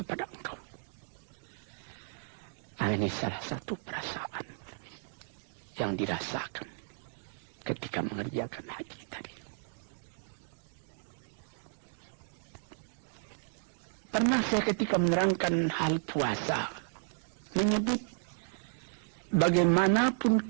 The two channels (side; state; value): left; silent; digital silence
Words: engkau. Ini salah satu perasaan yang dirasakan ketika mengerjakan haji tadi. Pernah saya ketika menerangkan hal puasa menyebut bagaimanapun